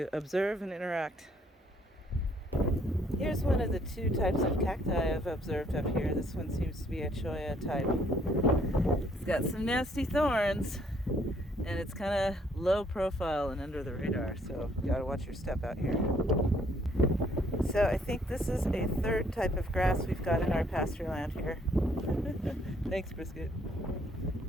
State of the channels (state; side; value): normal; both; correlation 0.65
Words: observe and interact. Here's one of the two types of cacti I've observed up here. This one seems to be a cholla type. It's got some nasty thorns, and it's kind of low profile and under the radar, so you gotta watch your step out here. So I think this is a third type of grass we've got in our pasture land here. Thanks, Brisket.